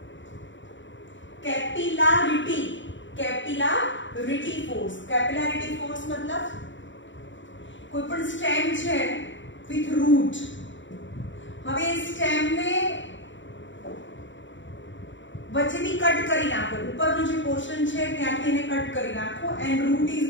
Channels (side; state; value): right; late; 0.55 ms